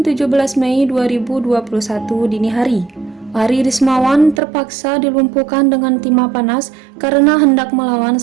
17 Mei 2021 dini hari. Ari Resmawan terpaksa dilumpuhkan dengan timah panas karena hendak melawan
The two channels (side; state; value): left; drops out; at 4.4 s